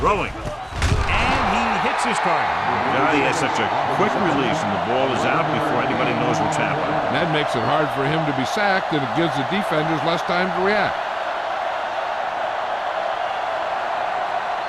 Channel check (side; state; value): both; identical; correlation 1.00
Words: Throwing. And he hits his target. God, he has such a quick release, and the ball is out before anybody knows what's happening. And that makes it hard for him to be sacked, and it gives the defenders less time to react.